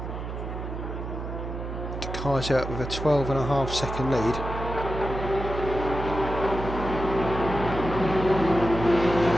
Kaiser with a 12.5 second lead.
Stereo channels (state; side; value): noise; right; hum, 6 dB below the sound